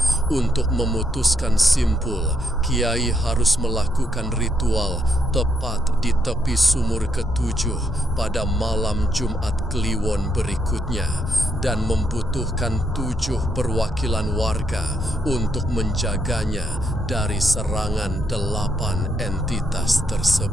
Untuk memutuskan simpul, Kiai harus melakukan ritual tepat di tepi sumur ketujuh pada malam Jumat Kliwon berikutnya, dan membutuhkan 7 perwakilan warga untuk menjaganya dari serangan 8 entitas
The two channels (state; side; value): normal; both; correlation 0.76